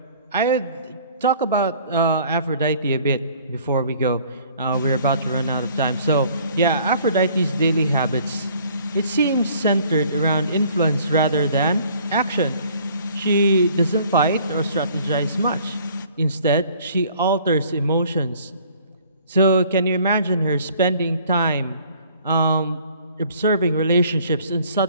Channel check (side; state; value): both; inverted; correlation -0.56